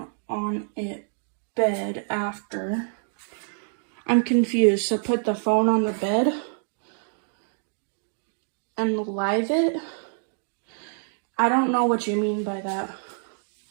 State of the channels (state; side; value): silent; left; digital silence